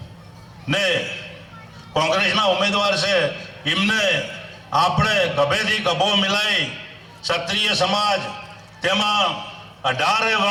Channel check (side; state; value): both; identical; correlation 1.00